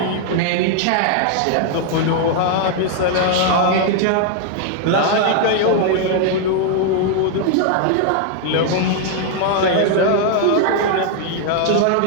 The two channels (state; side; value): different; both; correlation 0.00